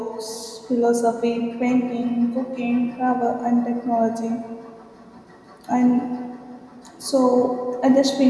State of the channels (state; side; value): identical; both; correlation 1.00